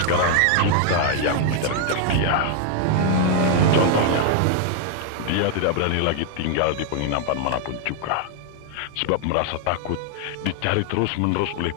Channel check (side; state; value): both; different; correlation 0.00